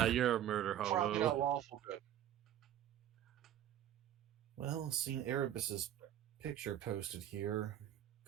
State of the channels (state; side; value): quieter; left; 11.2 dB